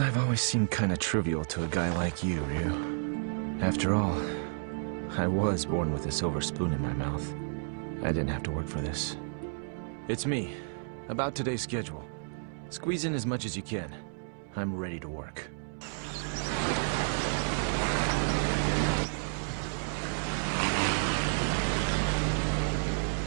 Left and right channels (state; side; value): silent; left; digital silence